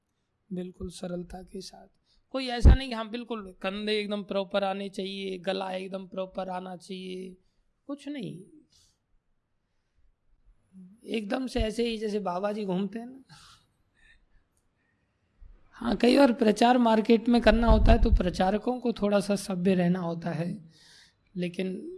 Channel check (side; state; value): both; identical; correlation 1.00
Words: बिल्कुल सरलता के साथ। कोई ऐसा नहीं कि हाँ बिल्कुल कंधे एकदम प्रॉपर आने चाहिए, गला एकदम प्रॉपर आना चाहिए, कुछ नहीं, एकदम से ऐसे ही जैसे बाबा जी घूमते हैं ना। हाँ, कई बार प्रचार मार्केट में करना होता है तो प्रचारकों को थोड़ा सा सभ्य रहना होता है,